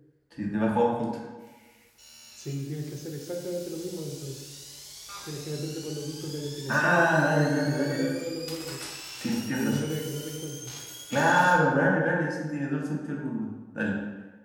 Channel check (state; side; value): identical; both; correlation 1.00